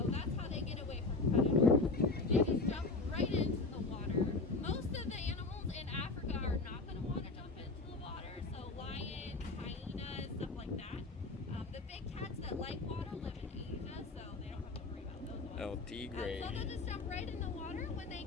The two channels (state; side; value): quieter; right; 3.6 dB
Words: Africa live in Asia, so they don't have to worry about those ones. El Tigre. So they'll just jump right in the water when they